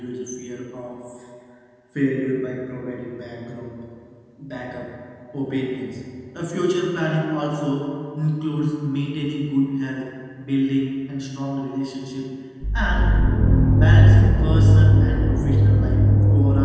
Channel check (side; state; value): both; identical; correlation 1.00